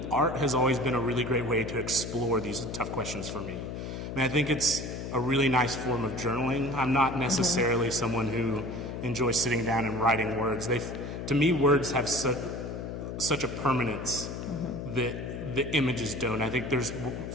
art has always been a really great way to explore these tough questions for me. I think it's a really nice form of journaling. I'm not necessarily someone who enjoys sitting down and writing words. To me, words have such a permanence that the images don't. I think there's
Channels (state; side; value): noise; left; hum, 6 dB below the sound